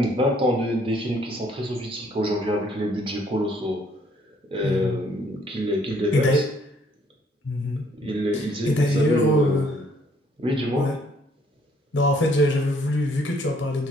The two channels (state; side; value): normal; both; correlation 0.64